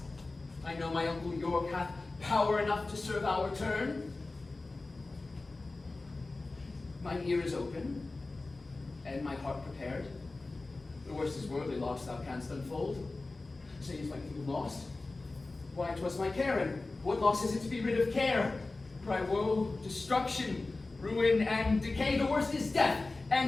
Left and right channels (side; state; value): right; quieter; 3.3 dB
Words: I know my uncle York hath power enough to serve our turn. Mine ear is open, and my heart prepared. The worst is worldly loss thou canst unfold. Say, is my kingdom lost? Why, 'twas my care, and what loss is it to be rid of care? Cry woe, destruction, ruin, and decay. The worst is death,